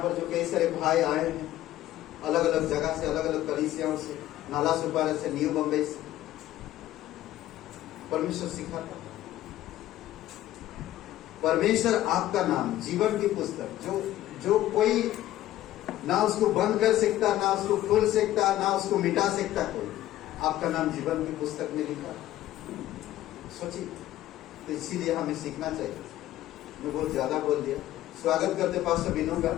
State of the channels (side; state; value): right; quieter; 14.2 dB